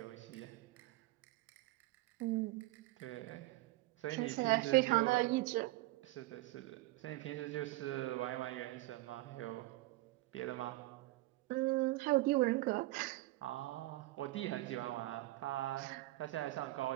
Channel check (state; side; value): quieter; left; 19.0 dB